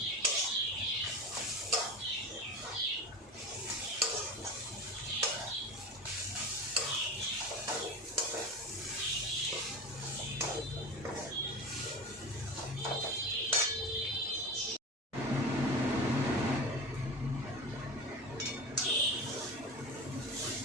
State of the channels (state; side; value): normal; both; correlation 0.30